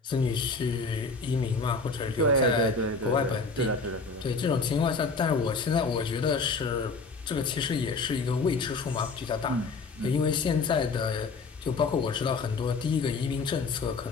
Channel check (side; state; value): right; quieter; 4.1 dB